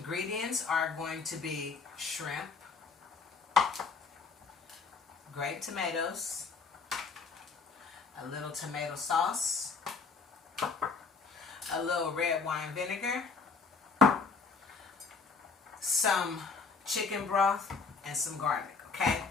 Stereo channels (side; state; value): right; quieter; 4.9 dB